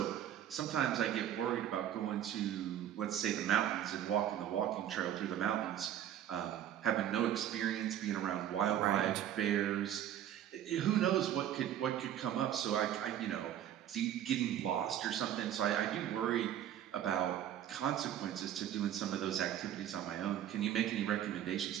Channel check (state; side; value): quieter; left; 10.9 dB